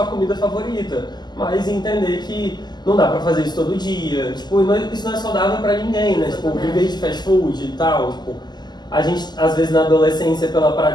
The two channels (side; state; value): right; late; 0.21 ms